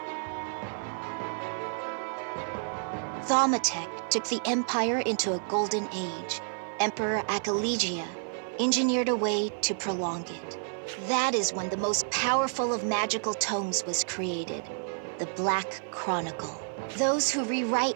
Thaumatex took the Empire into a golden age. Emperor Achillegia engineered a way to prolong it. That is when the most powerful of magical tomes was created, the Black Chronicle. Those who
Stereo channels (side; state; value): left; silent; 58 dB below the other